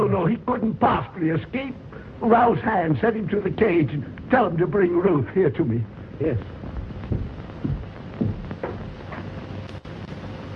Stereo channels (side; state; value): both; identical; correlation 1.00